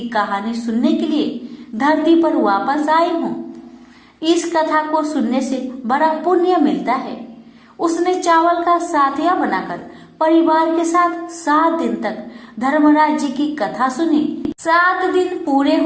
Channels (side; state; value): both; identical; correlation 1.00